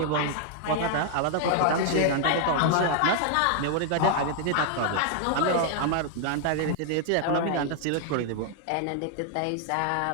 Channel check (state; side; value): different; both; correlation 0.00